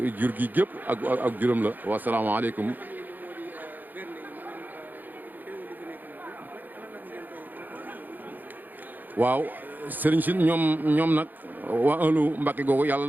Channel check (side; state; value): left; late; 0.086 ms